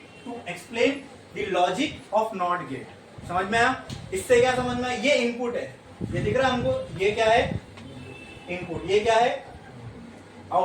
to explain the logic of not gate. समझ में आया? इससे क्या समझ में आया? ये इनपुट है, ये दिख रहा है हमको, ये क्या है? इनपुट। ये क्या है?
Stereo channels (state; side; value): identical; both; correlation 1.00